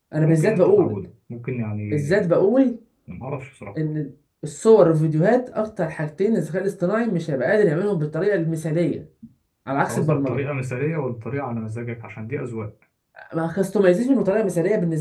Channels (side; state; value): both; identical; correlation 1.00